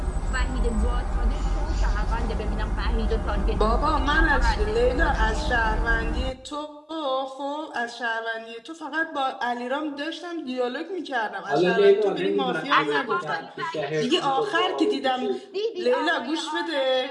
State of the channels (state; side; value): identical; both; correlation 1.00